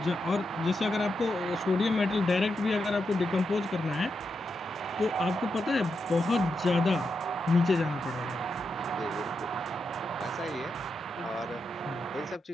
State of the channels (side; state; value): both; normal; correlation 0.85